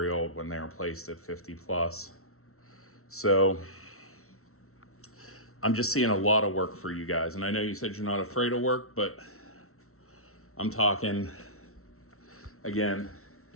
old when they replaced it, 50 plus. So I'm just seeing a lot of work for you guys. And I know you said you're not afraid of work, but I'm talking, again,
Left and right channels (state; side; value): late; right; 0.63 ms